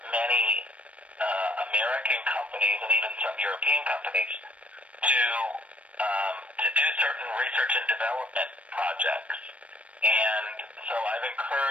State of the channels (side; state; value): left; late; 0.064 ms